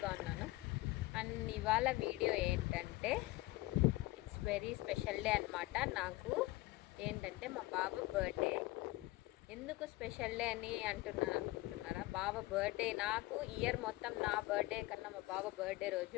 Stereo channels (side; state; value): right; quieter; 19.7 dB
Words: ఉన్నాను. అండ్ ఇవాళ వీడియో ఏంటంటే ఇట్స్ వెరీ స్పెషల్ డే అనమాట. నాకు ఏంటంటే మా బాబు బర్త్డే. ఎందుకు స్పెషల్ డే అని అనుకుంటున్నారా? బాబు బర్త్డే నాకు ఇయర్ మొత్తం నా బర్త్డే కన్నా మా బాబు బర్త్డే